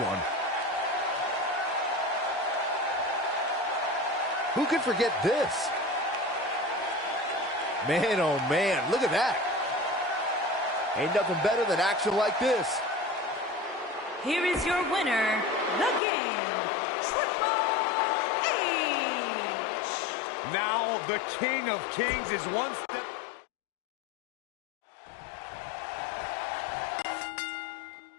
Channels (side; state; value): right; drops out; at 16.0 s